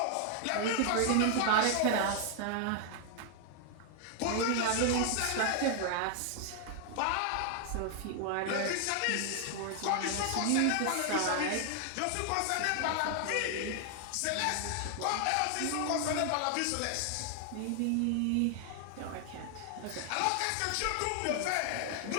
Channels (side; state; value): both; different; correlation 0.00